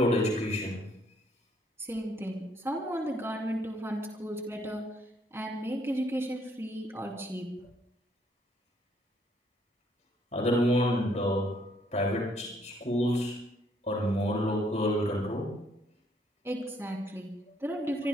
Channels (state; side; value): normal; both; correlation 0.68